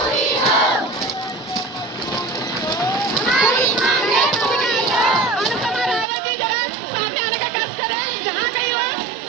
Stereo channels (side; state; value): left; drops out; at 6.1 s